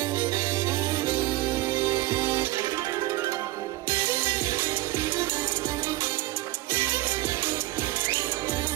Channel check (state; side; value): quieter; left; 18.4 dB